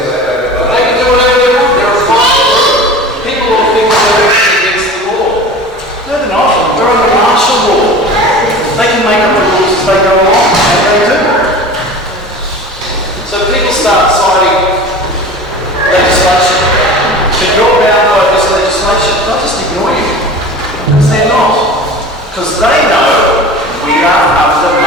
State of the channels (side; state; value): both; normal; correlation 0.37